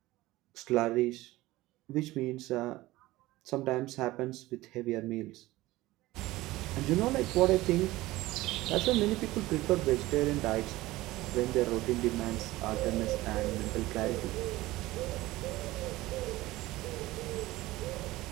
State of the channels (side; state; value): left; quieter; 18.2 dB